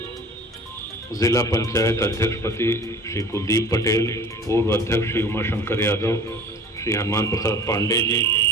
जिला पंचायत अध्यक्ष पति श्री कुलदीप पटेल, पूर्व अध्यक्ष श्री उमाशंकर यादव, श्री हनुमान प्रसाद पांडे जी,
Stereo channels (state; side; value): normal; both; correlation 0.43